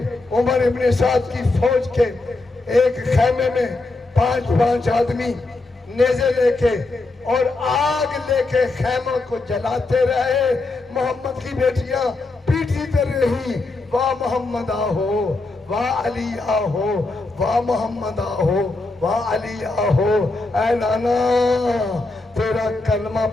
عمر ابن سعد کی فوج کے ایک خیمے میں 5 آدمی نیزے لے کے اور آگ لے کے خیموں کو جلاتے رہے، محمد کی بیٹیاں پیٹتی رہی، واہ محمد آہو، واہ علی آہو، واہ محمد آہو، واہ علی آہو۔ اے نانا، تیرا کلمہ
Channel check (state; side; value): quieter; right; 3.2 dB